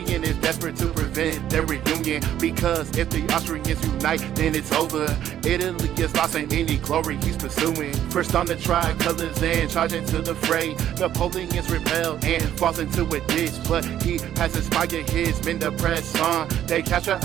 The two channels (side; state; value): left; quieter; 11.1 dB